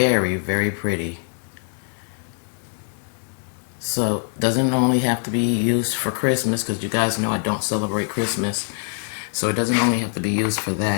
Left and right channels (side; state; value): right; silent; 58 dB below the other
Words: very pretty. So doesn't only have to be used for Christmas, because you guys know I don't celebrate Christmas. So it doesn't only have to be used for